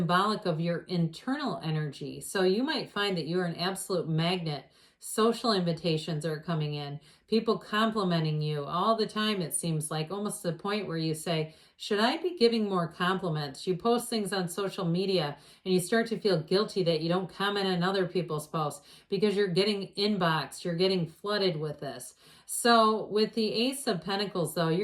of your internal energy. So you might find that you're an absolute magnet. Social invitations are coming in. People complimenting you all the time, it seems like, almost to the point where you say, should I be giving more compliments? You post things on social media and you start to feel guilty that you don't comment on other people's posts because you're getting inboxed, you're getting flooded with this. So with the Ace of Pentacles, though,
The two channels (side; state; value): both; identical; correlation 1.00